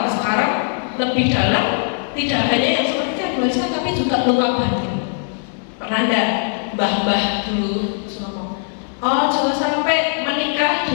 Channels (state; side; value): silent; right; 58 dB below the other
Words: sekarang lebih dalam, tidak hanya yang seperti yang diwariskan, tapi juga luka batin. Pernah enggak mbah-mbah dulu ngomong, oh jangan sampai menikah